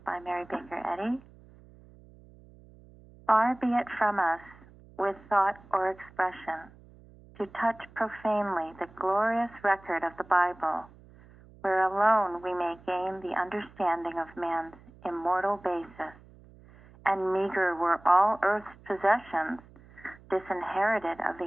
by Mary Baker Eddy. Far be it from us, with thought or expression, to touch profanely the glorious record of the Bible, where alone we may gain the understanding of man's immortal basis, and meager were all earth's possessions, disinherited of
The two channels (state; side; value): noise; right; hum, 24 dB below the sound